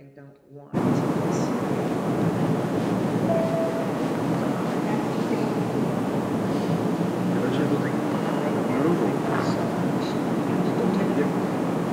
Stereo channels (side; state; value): both; identical; correlation 1.00